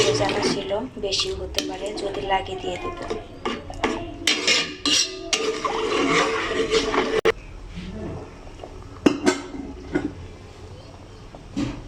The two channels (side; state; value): both; identical; correlation 1.00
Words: ভেজানো ছিল, বেশিও হতে পারে, যদি লাগে দিয়ে দেবো।